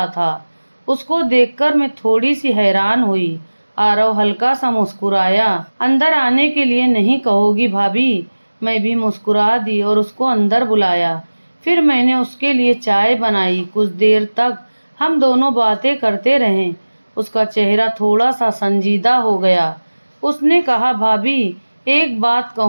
था। उसको देखकर मैं थोड़ी सी हैरान हुई। आरव हल्का सा मुस्कुराया। अंदर आने के लिए नहीं कहोगी भाभी? मैं भी मुस्कुरा दी और उसको अंदर बुलाया। फिर मैंने उसके लिए चाय बनाई। कुछ देर तक हम दोनों बातें करते रहे। उसका चेहरा थोड़ा सा संजीदा हो गया। उसने कहा भाभी, एक बात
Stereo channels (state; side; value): inverted; both; correlation -1.00